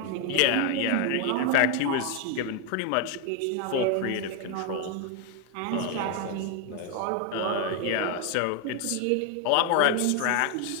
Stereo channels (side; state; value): both; different; correlation 0.01